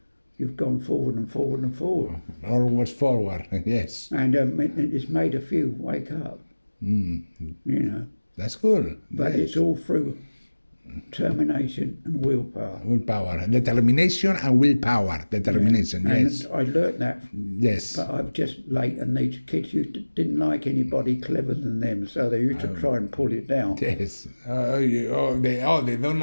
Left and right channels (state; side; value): inverted; both; correlation -1.00